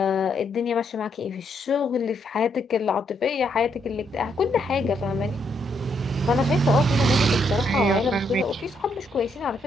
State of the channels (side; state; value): both; normal; correlation 0.75